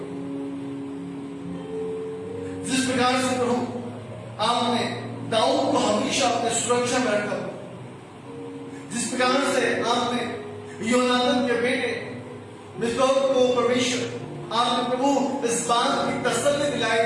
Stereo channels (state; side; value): identical; both; correlation 1.00